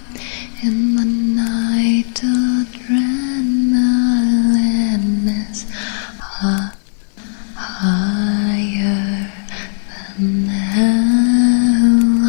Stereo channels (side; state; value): right; silent; digital silence